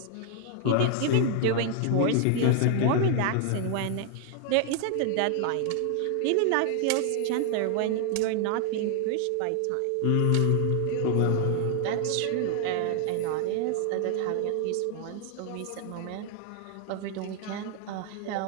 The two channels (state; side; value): different; both; correlation 0.00